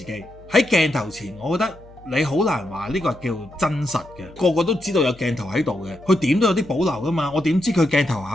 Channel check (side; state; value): left; noise; hum, 23 dB below the sound